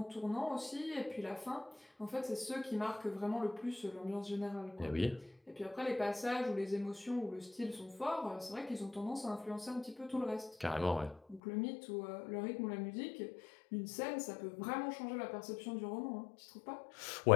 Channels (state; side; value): drops out; right; at 11.4 s